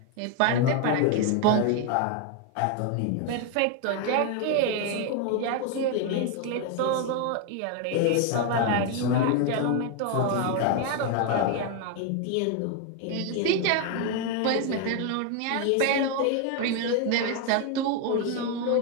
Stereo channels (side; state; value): both; different; correlation 0.01